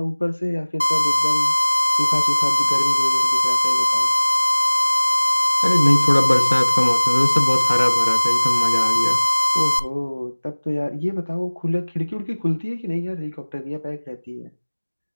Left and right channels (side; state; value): both; inverted; correlation -1.00